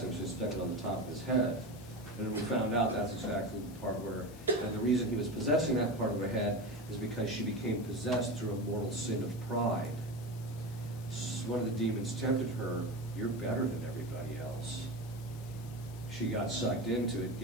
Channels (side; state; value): left; noise; hiss, 20 dB below the sound